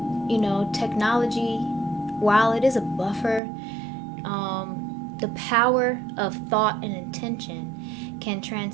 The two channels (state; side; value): drops out; left; at 3.4 s